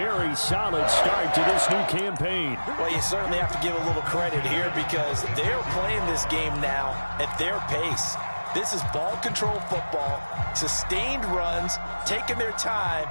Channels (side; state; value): both; inverted; correlation -1.00